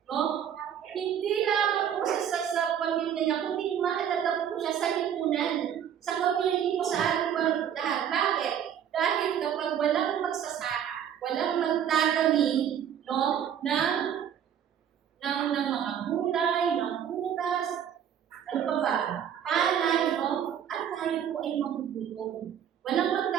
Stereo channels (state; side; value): quieter; left; 9.1 dB